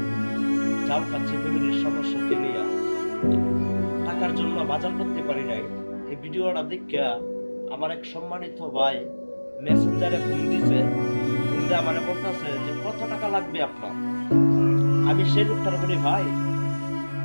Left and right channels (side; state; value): both; inverted; correlation -1.00